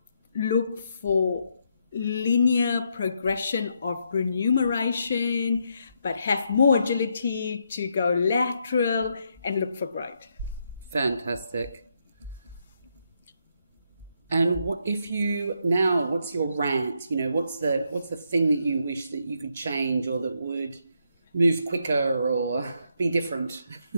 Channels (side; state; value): both; inverted; correlation -0.78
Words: look for linear progression of remuneration, but have more agility to go lateral and look for growth. Fantastic. And what's your rant? What's the thing that you wish that you could change, or that would move quicker or be different?